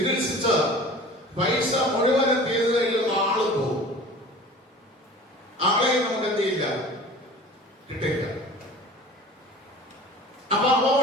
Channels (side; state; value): both; normal; correlation 0.42